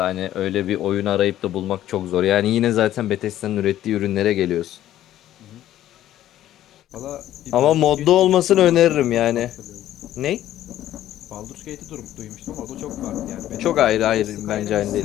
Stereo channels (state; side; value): quieter; right; 12.8 dB